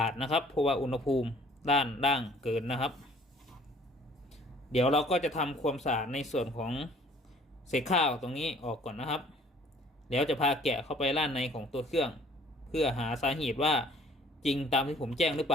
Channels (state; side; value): normal; both; correlation 0.55